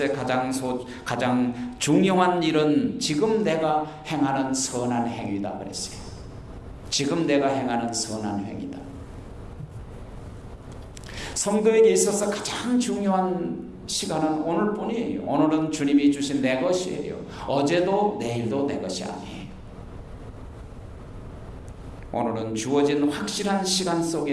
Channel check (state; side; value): identical; both; correlation 1.00